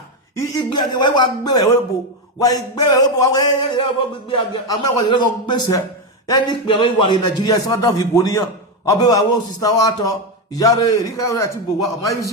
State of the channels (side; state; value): both; normal; correlation 0.09